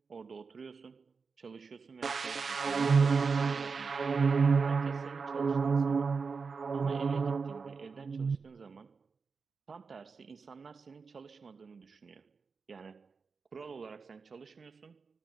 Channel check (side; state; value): left; quieter; 5.0 dB